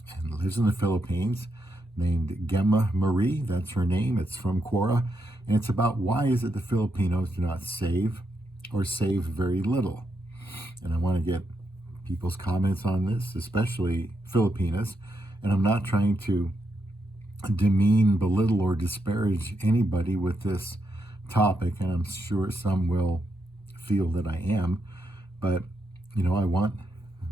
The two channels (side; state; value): both; normal; correlation 0.81